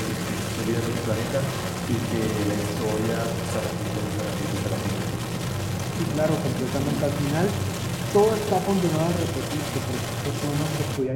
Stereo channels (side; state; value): both; identical; correlation 1.00